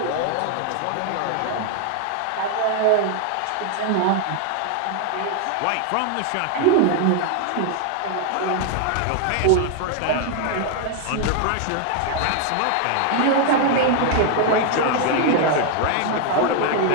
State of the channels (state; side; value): different; both; correlation 0.00